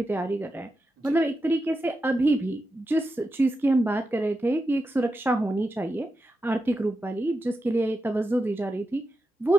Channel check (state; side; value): normal; both; correlation 0.89